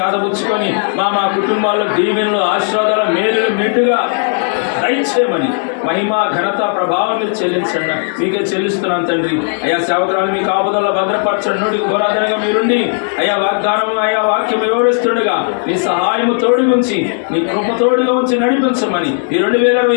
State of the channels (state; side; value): silent; right; 63 dB below the other